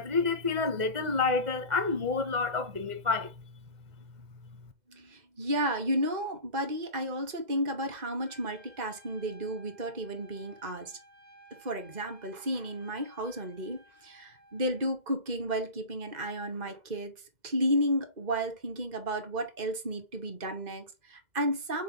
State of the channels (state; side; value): late; left; 2.0 ms